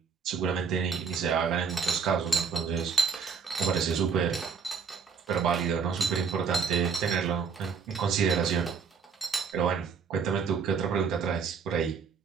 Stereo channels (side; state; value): left; quieter; 5.9 dB